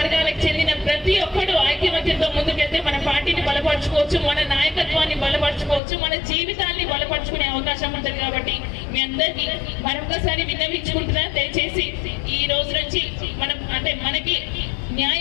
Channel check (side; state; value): right; drops out; at 5.8 s